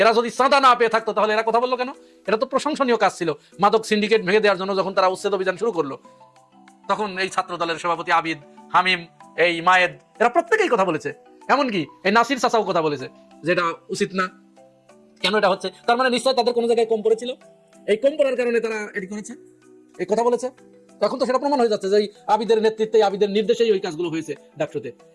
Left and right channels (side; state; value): both; identical; correlation 1.00